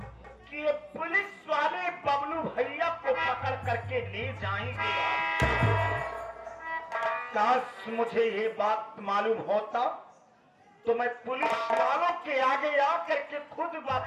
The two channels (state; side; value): identical; both; correlation 1.00